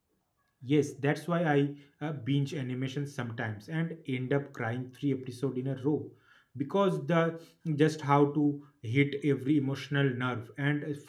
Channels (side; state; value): both; identical; correlation 1.00